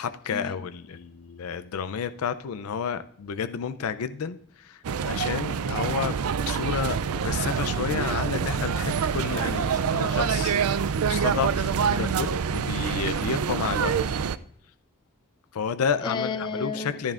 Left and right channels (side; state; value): both; normal; correlation 0.01